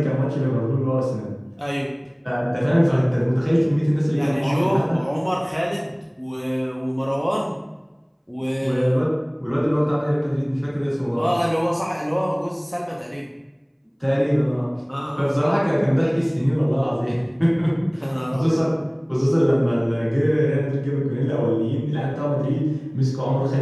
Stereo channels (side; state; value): both; identical; correlation 1.00